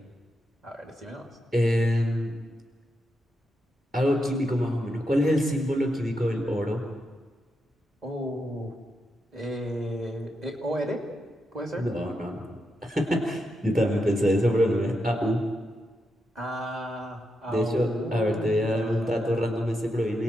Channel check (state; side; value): normal; both; correlation 0.85